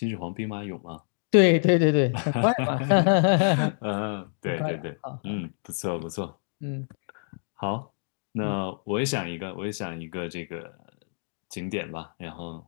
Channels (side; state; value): right; silent; digital silence